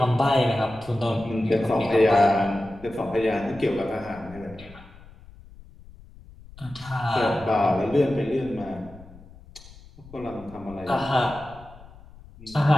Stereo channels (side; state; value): left; noise; rumble, 21 dB below the sound